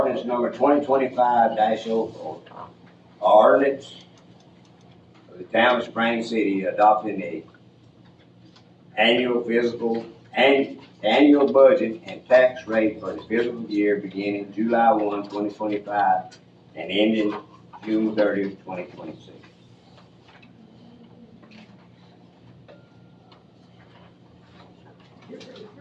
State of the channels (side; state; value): both; identical; correlation 1.00